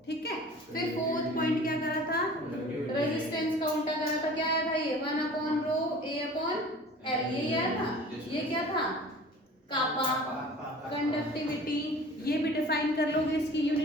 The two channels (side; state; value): both; normal; correlation 0.44